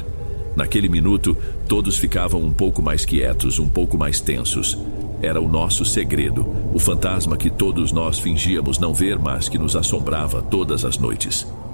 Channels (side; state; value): both; inverted; correlation -1.00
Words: Naquele minuto, todos ficavam um pouco mais quietos, um pouco mais tensos. Era o nosso segredo, o fantasma que todos nós fingíamos não ver, mas que nos assombrava todas as noites.